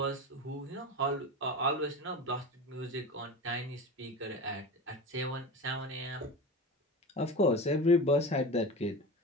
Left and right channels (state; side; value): normal; both; correlation 0.29